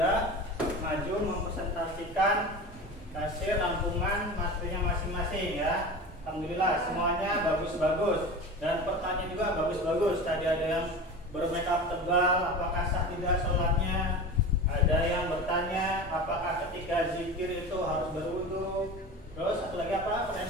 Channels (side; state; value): both; normal; correlation 0.31